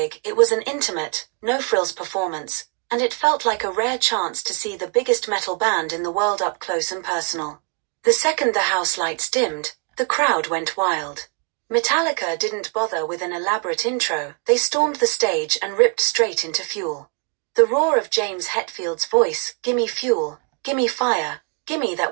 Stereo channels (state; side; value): quieter; left; 32.8 dB